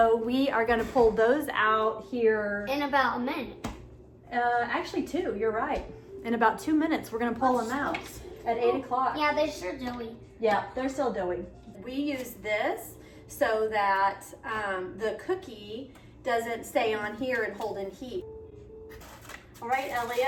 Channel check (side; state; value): both; identical; correlation 1.00